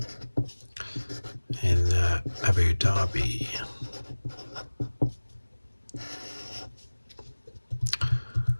in Abu Dhabi.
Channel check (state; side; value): inverted; both; correlation -1.00